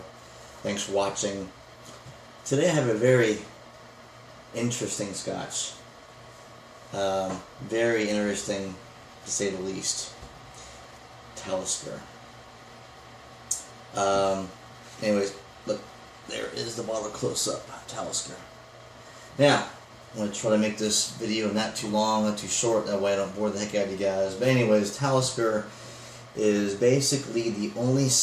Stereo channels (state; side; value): identical; both; correlation 1.00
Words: Thanks for watching. Today I have a very interesting Scotch. Very interesting, to say the least. Talisker. Anyways, look, there is the bottle close up. Talisker. Now, I'm going to try to make this video not too long, not too short, that way I don't bore the heck out of you guys. But anyways, Talisker is basically the only